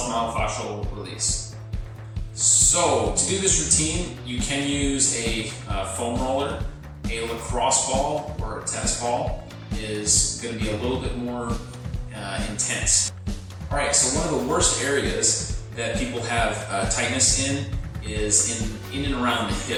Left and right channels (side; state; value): both; identical; correlation 1.00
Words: release. So to do this routine, you can use a foam roller. A lacrosse ball or a tennis ball is going to be a little bit more intense. Alright, so one of the worst areas that people have tightness in is in and around the